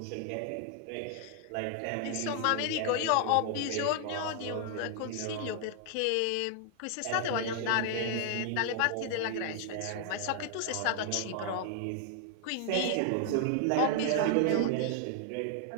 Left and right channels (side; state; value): both; different; correlation 0.00